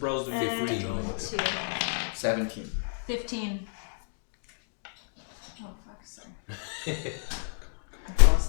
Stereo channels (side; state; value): right; silent; digital silence